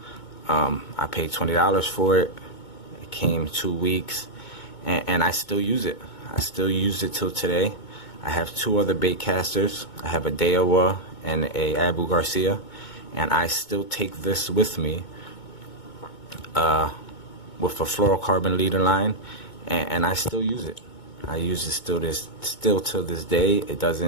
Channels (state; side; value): late; right; 2.2 ms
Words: I paid $20 for it. It came 2 weeks, and I still use it. I still use it till today. I have 2 other bait casters. I have a Daiwa and a Abu Garcia, and I still take this with me with a fluorocarbon leader line, and I still use it. I use it still till this day. It